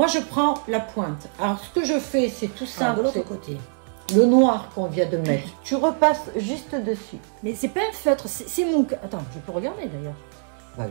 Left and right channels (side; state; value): left; silent; digital silence